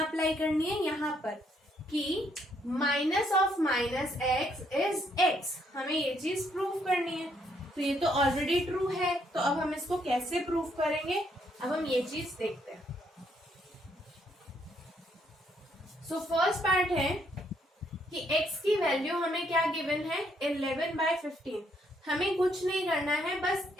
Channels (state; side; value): normal; both; correlation 0.71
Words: अप्लाई करनी है, यहाँ पर, कि minus of minus X is x, हमें ये चीज प्रूव करनी है। तो ये तो ऑलरेडी ट्रू है, तो अब हम इसको कैसे प्रूव करेंगे, अब हम ये चीज देखते हैं। सो फर्स्ट पार्ट है कि x की वैल्यू हमें क्या गिवन है, 11/15। हमें कुछ नहीं करना है, बस